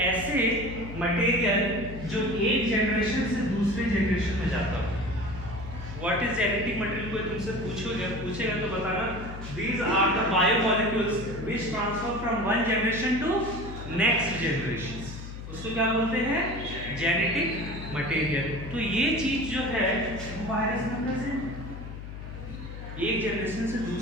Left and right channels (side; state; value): left; noise; hum, 10 dB below the sound